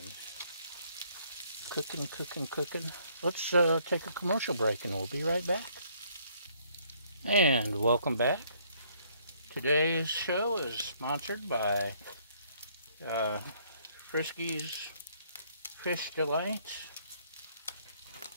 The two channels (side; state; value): both; inverted; correlation -0.65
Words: cooking. Let's take a commercial break and we'll be right back. And welcome back. Today's show is sponsored by Frisky's Fish Delights